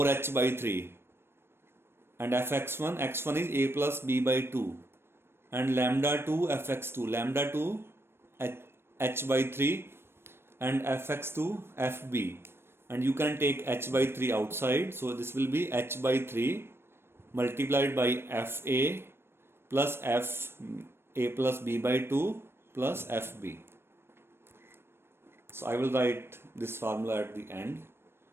by 3. And fx1, x1 is a plus b by 2. And lambda 2 fx2, lambda 2 h by 3, and fx2 fb. And you can take h by 3 outside. So this will be h by 3 multiplied by fa plus f a plus b by 2 plus fb. So I will write this formula at the end.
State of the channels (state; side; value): late; left; 0.12 ms